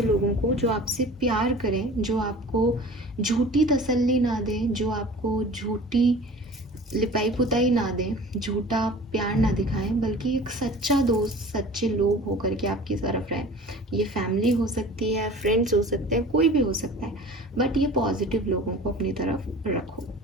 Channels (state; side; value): normal; both; correlation 0.42